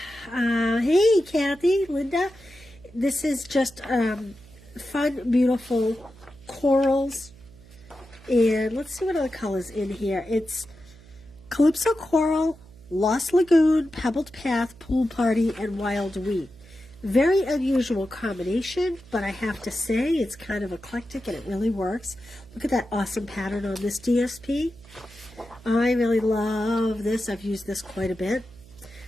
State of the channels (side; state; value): right; noise; hum, 23 dB below the sound